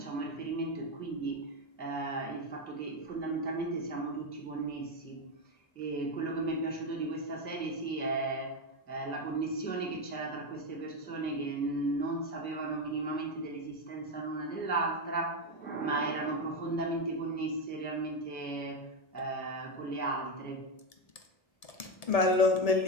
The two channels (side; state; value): right; late; 1.8 ms